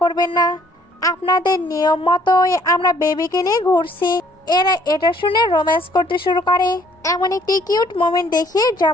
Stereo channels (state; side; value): normal; both; correlation 0.61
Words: করবেন না, আপনাদের নিয়ম মতোই আমরা বেবিকে নিয়ে ঘুরছি। এরা এটা শুনে রোম্যান্স করতে শুরু করে। এমন একটি কিউট মোমেন্ট দেখিয়ে